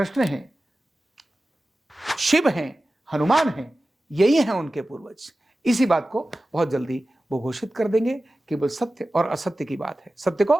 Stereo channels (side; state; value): both; normal; correlation 0.95